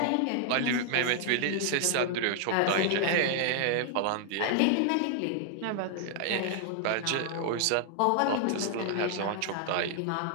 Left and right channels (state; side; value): different; both; correlation 0.00